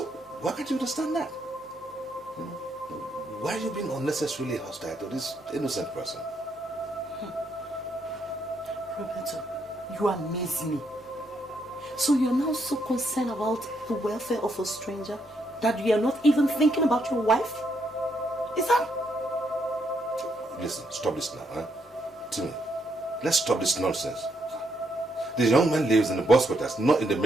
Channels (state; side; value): normal; both; correlation 0.76